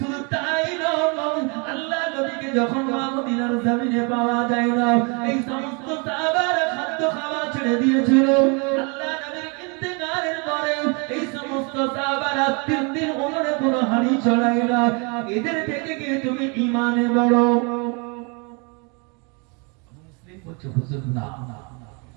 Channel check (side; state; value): left; quieter; 33.0 dB